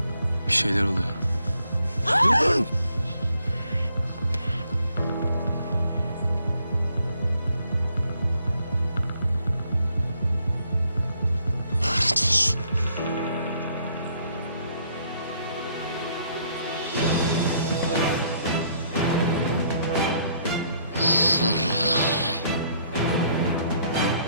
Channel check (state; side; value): inverted; both; correlation -0.68